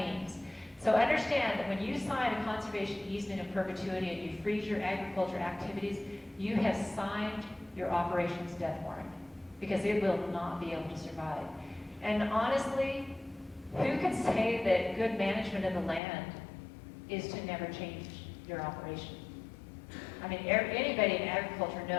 So understand that when you sign a conservation easement in perpetuity and you freeze your agriculture activities, you have signed your operations death warrant because it will not be able to survive. And honestly, who can say that good management of the land is to never change your operation? I mean, anybody in agriculture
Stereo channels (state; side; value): drops out; right; at 16.0 s